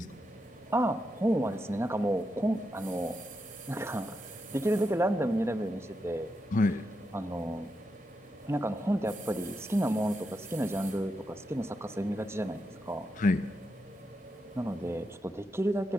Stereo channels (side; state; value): both; normal; correlation 0.85